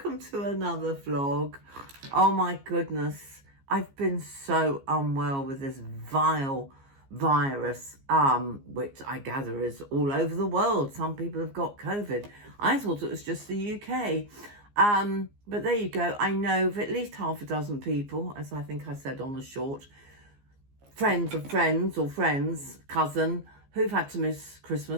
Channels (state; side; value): late; left; 15 ms